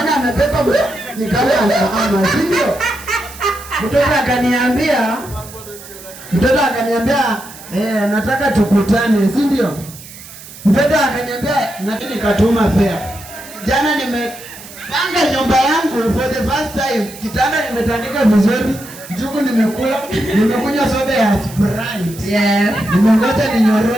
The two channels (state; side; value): noise; right; hiss, 17 dB below the sound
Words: amepepa ni kama ama sio? Mtoto akaniambia nataka tukutane, si ndio? Mtoto akaniambia nataka nikatuma fare. Jana nimepanga nyumba yangu for the first time. Kitanda nimetandika vizuri, jugu nimekula, nimekunywa soda ya Sprite. Yeah. Nimengoja